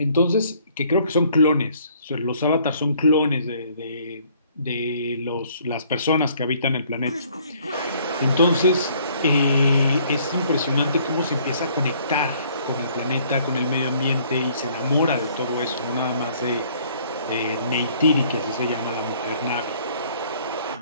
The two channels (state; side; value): inverted; both; correlation -0.61